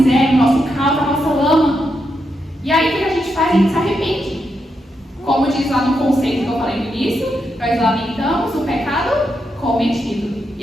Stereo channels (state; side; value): normal; both; correlation 0.83